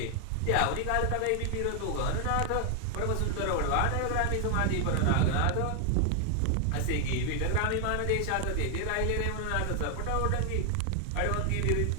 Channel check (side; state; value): both; different; correlation 0.00